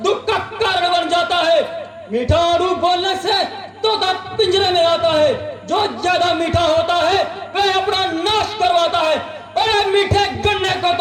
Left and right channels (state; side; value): identical; both; correlation 1.00